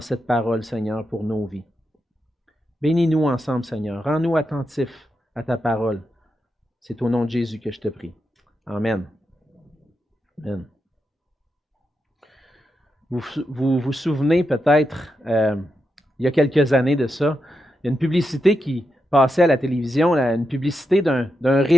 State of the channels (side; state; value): both; normal; correlation 0.86